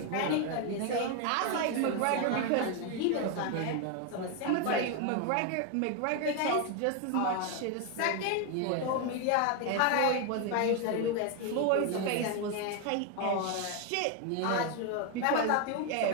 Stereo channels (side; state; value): both; different; correlation 0.01